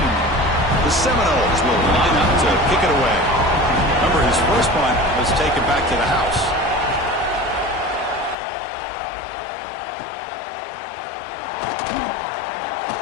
The Seminoles will line up to kick it away. Remember, his first punt was taken back to the house.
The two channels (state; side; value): drops out; right; at 8.3 s